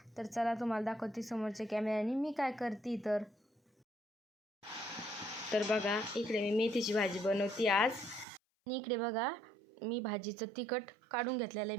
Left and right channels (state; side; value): drops out; left; at 8.2 s